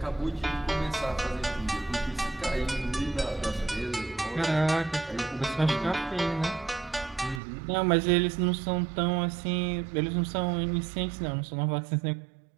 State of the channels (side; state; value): left; drops out; at 7.4 s